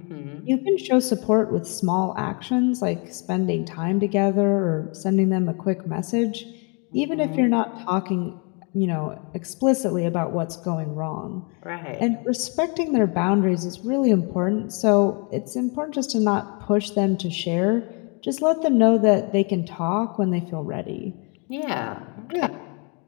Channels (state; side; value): quieter; right; 34.2 dB